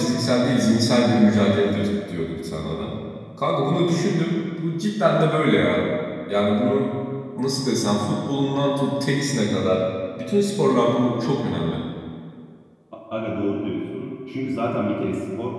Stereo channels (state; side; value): identical; both; correlation 1.00